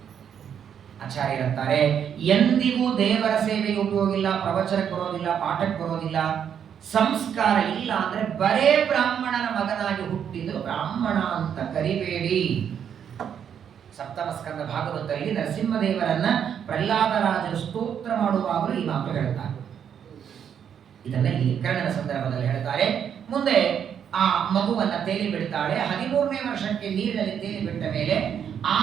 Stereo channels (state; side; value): quieter; left; 8.4 dB